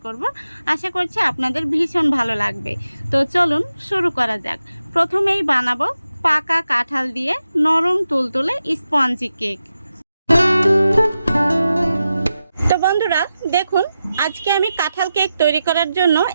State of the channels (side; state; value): both; inverted; correlation -0.90